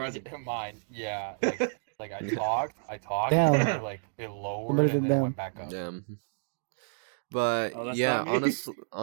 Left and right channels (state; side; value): silent; left; digital silence